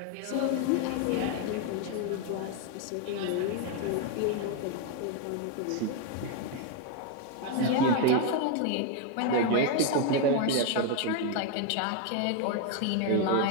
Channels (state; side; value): different; both; correlation 0.01